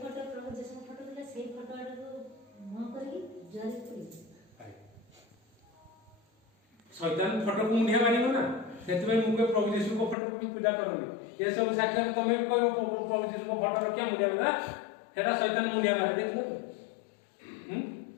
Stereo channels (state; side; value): drops out; right; at 10.2 s